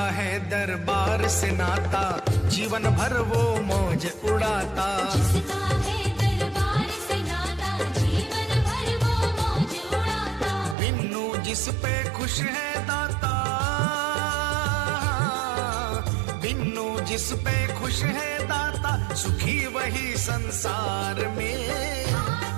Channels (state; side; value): drops out; left; at 10.8 s